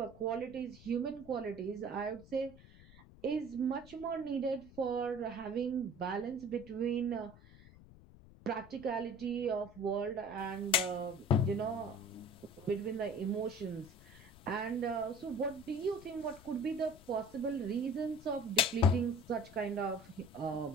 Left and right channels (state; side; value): noise; left; rumble, 21 dB below the sound